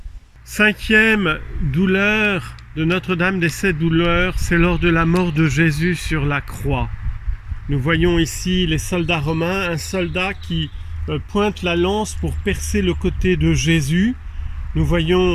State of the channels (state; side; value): identical; both; correlation 1.00